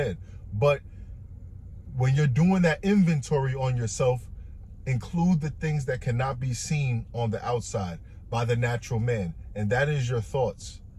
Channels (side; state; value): both; identical; correlation 1.00